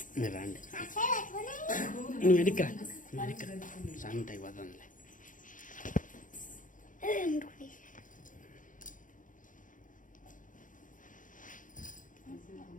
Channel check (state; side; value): late; right; 0.38 ms